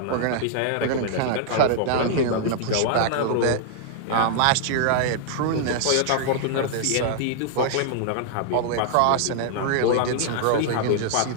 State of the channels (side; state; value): both; different; correlation -0.01